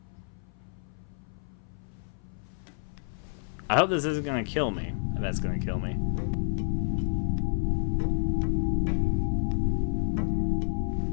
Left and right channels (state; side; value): silent; right; 56 dB below the other